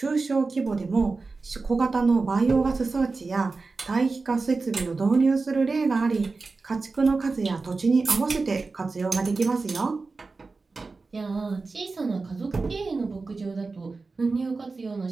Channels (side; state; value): left; quieter; 4.0 dB